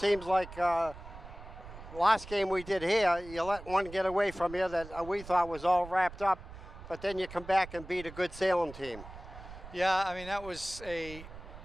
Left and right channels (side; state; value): right; noise; rumble, 15 dB below the sound